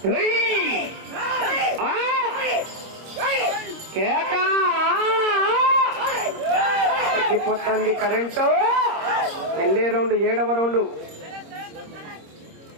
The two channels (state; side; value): late; left; 26 ms